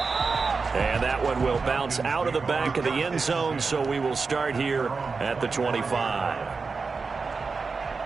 And that one will bounce out of the back of the end zone, so we will start here at the 25.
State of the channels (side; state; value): left; quieter; 4.6 dB